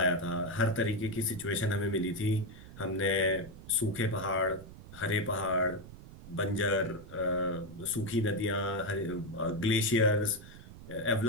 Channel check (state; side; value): noise; right; rumble, 16 dB below the sound